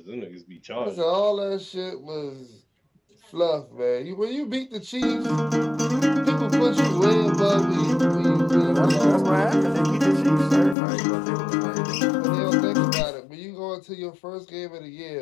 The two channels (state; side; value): drops out; right; at 10.8 s